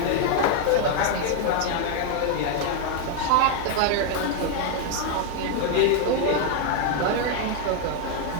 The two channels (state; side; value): different; both; correlation 0.00